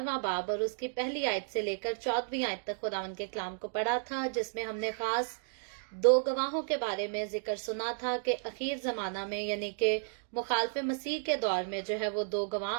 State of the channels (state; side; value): silent; left; digital silence